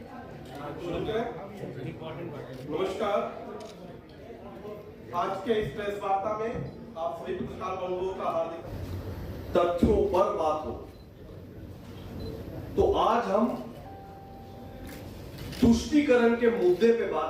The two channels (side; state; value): both; identical; correlation 1.00